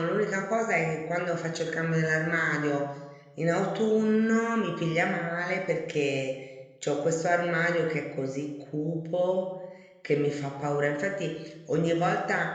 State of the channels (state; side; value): identical; both; correlation 1.00